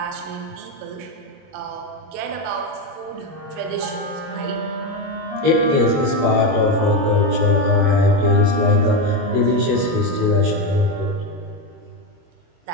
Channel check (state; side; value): late; left; 21 ms